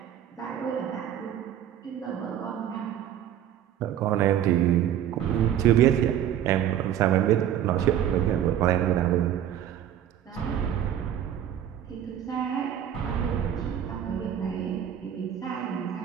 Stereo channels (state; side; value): quieter; left; 10.4 dB